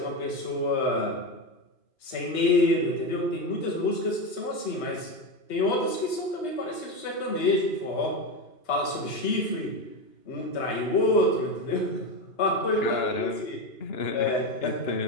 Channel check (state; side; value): late; right; 3.2 ms